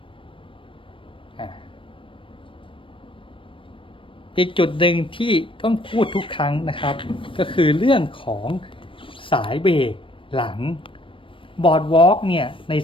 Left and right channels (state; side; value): late; right; 0.25 ms